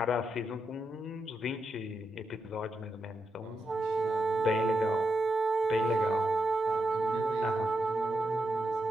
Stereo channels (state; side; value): normal; both; correlation 0.85